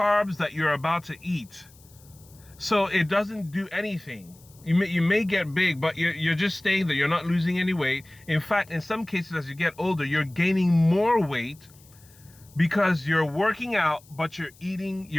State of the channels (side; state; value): left; noise; hiss, 26 dB below the sound